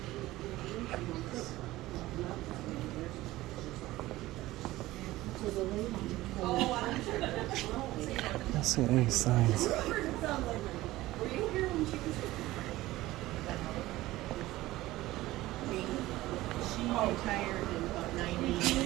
I don't see any signs.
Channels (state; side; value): quieter; left; 17.3 dB